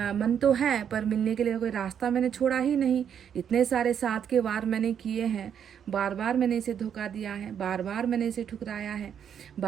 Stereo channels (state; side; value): quieter; left; 8.4 dB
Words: मन तो है, पर मिलने के लिए कोई रास्ता मैंने छोड़ा ही नहीं। इतने सारे साथ के वार मैंने किए हैं, बार बार मैंने इसे धोखा दिया है, बार बार मैंने इसे ठुकराया है,